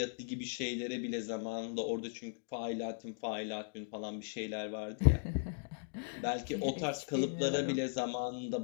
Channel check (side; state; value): right; silent; digital silence